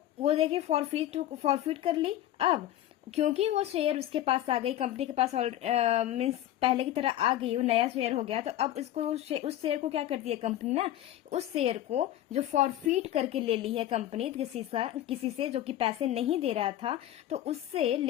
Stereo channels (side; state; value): right; quieter; 13.0 dB